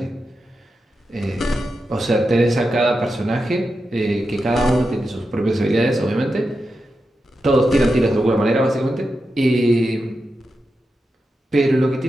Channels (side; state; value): both; normal; correlation 0.89